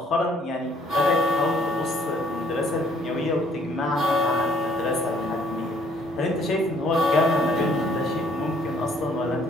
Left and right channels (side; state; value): both; normal; correlation 0.62